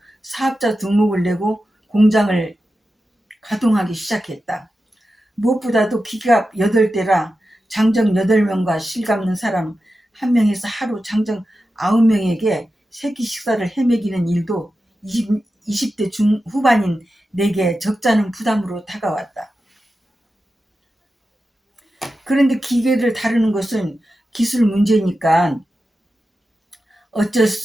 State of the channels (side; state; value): both; normal; correlation 0.91